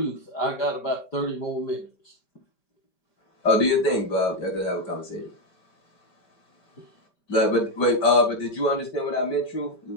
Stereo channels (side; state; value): right; late; 5.2 ms